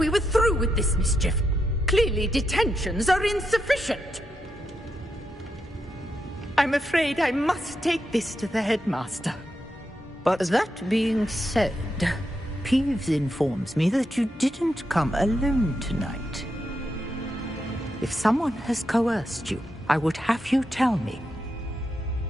were through with this mischief. Clearly detentions are insufficient. I'm afraid I must take this to the headmaster. But that being said, Peeves informs me that you didn't come alone tonight. If someone has coerced you, I would have you tell me.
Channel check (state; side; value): normal; both; correlation 0.84